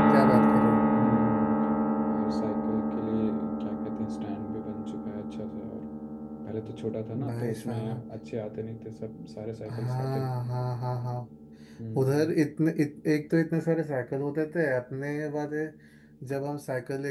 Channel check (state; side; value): identical; both; correlation 1.00